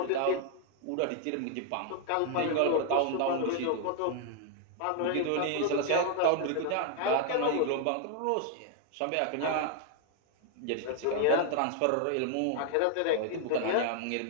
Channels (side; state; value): both; different; correlation 0.00